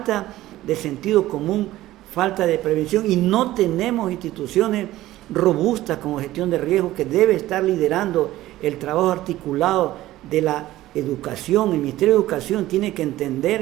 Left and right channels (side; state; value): left; quieter; 15.6 dB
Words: de sentido común, falta de prevención, y no tenemos instituciones robustas como gestión de riesgo, que debe estar liderando el trabajo articulado de la educación. El Ministerio de Educación tiene que